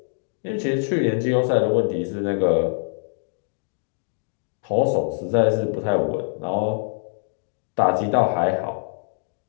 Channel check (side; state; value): right; silent; digital silence